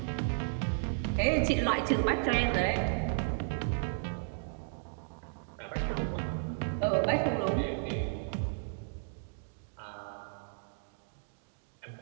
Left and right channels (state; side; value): silent; left; digital silence